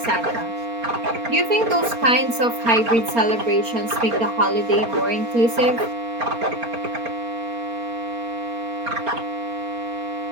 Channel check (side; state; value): left; late; 4.3 ms